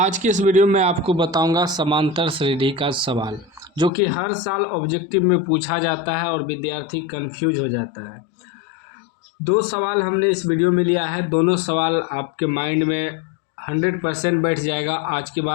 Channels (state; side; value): drops out; right; at 3.9 s